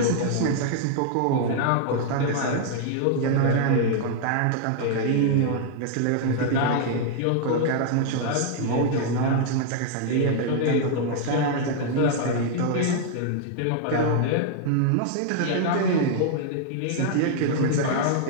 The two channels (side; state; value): both; different; correlation -0.01